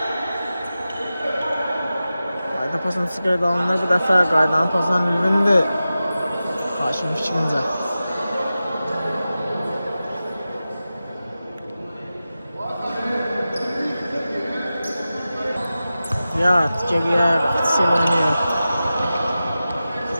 qayda pasını çıxardı alınır. Bu dəfə qaydanın pasından Ülvindir. Haşimin fikrincə. Riyad geriyə Rəqçisi oynayır.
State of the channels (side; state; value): both; inverted; correlation -0.94